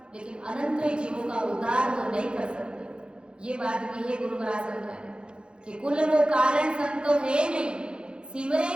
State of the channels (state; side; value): late; left; 0.052 ms